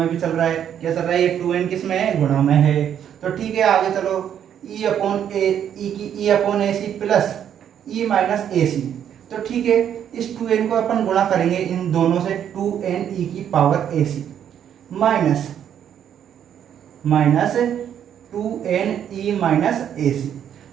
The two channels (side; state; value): left; quieter; 9.4 dB